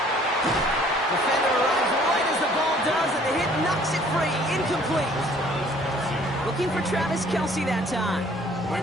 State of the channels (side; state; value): both; normal; correlation 0.56